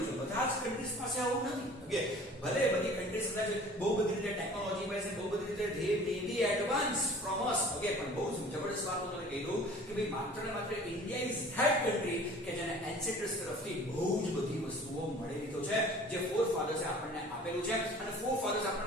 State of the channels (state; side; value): normal; both; correlation 0.47